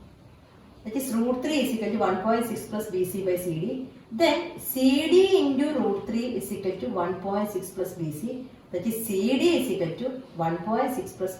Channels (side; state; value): both; identical; correlation 1.00